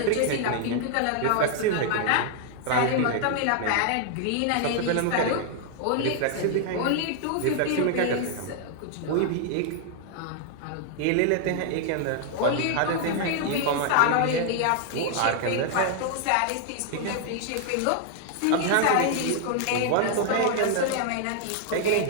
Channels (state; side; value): different; both; correlation 0.00